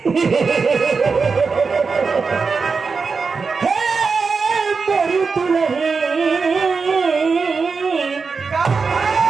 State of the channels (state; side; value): quieter; left; 4.9 dB